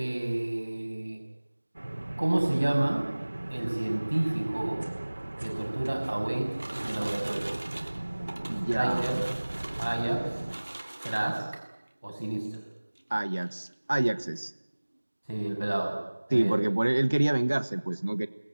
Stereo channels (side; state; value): both; inverted; correlation -1.00